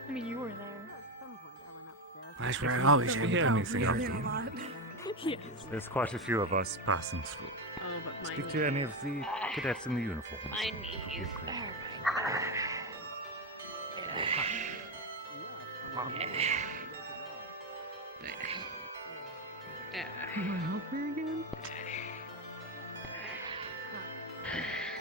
I mean, you were there. That's where I always had anything else. Yes. There's quite a few of us passing through. Speak to any of the cadets in the uniforms. My knees. You want help here again?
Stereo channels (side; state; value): both; normal; correlation 0.11